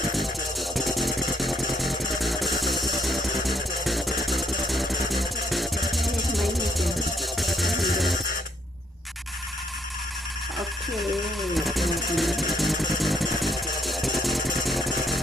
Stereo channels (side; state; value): both; normal; correlation 0.71